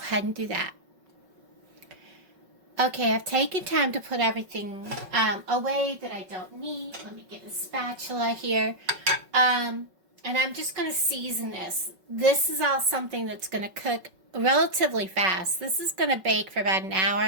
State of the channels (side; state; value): left; late; 5.3 ms